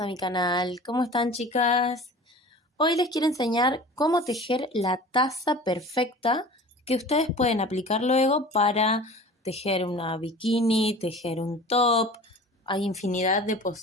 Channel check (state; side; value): normal; both; correlation 0.41